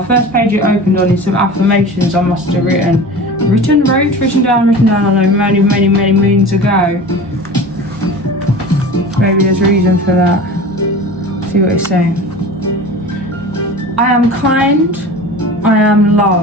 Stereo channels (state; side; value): normal; both; correlation 0.36